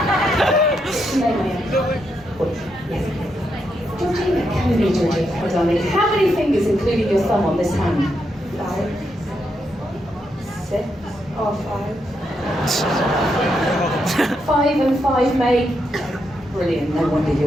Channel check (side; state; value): both; normal; correlation 0.81